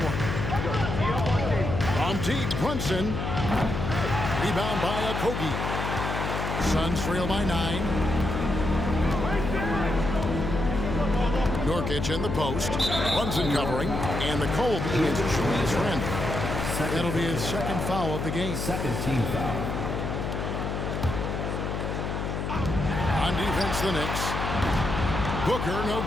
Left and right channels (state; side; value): noise; left; hum, 3 dB below the sound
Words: From deep, Brunson. Rebound by Okogie. Suns trail by 9. Nurkic in the post. Brunson covering. And the cold is Julius Randle. That'll be his 2nd foul of the game. Second team foul. On defense, the Knicks. Booker, no